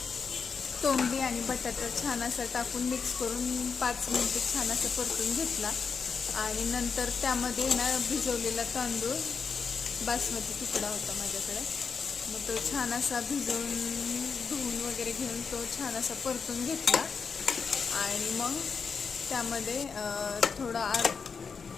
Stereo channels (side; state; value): right; quieter; 5.6 dB